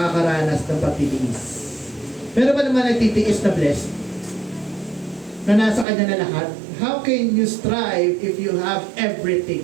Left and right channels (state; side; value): drops out; left; at 5.9 s